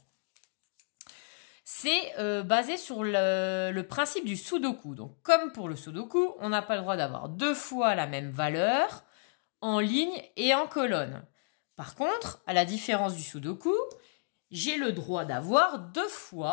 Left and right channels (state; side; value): silent; right; 56 dB below the other